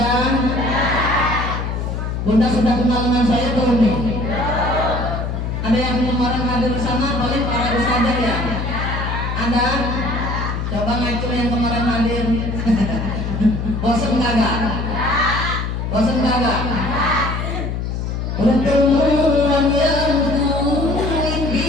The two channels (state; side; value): noise; left; hum, 3 dB below the sound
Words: Bunda sudah kenal dengan saya belum nih? Ada yang kemarin hadir di sana, paling para ustadzah ya? Ada? Coba ngacu yang kemarin hadir. Bosan kagak? Bosan kagak? Pertemuan yang